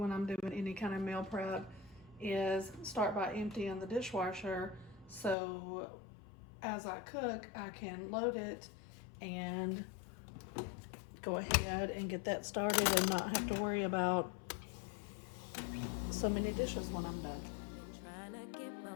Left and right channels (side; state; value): right; drops out; at 5.4 s